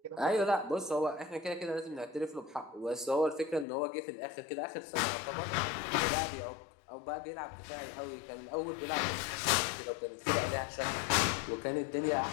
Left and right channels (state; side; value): drops out; right; at 3.7 s